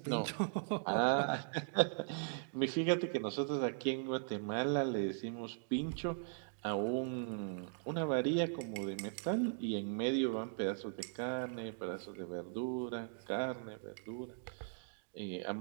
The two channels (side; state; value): left; silent; digital silence